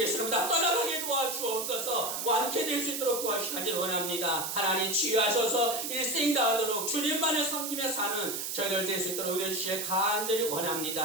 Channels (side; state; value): right; noise; hiss, 4 dB below the sound